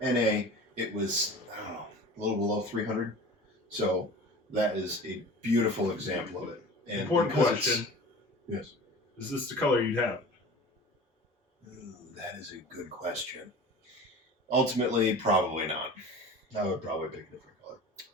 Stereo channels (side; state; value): both; normal; correlation 0.38